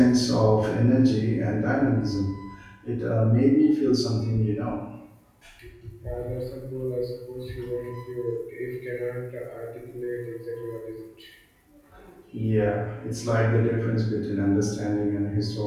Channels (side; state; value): both; identical; correlation 1.00